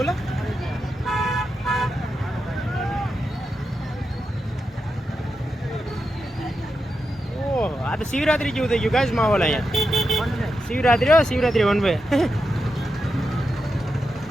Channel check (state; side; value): normal; both; correlation 0.88